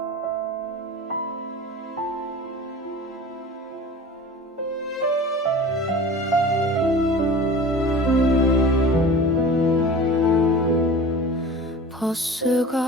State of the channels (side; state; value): both; normal; correlation 0.37